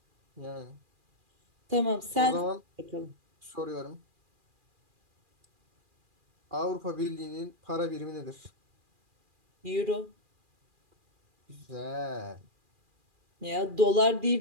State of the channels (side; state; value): left; late; 2.4 ms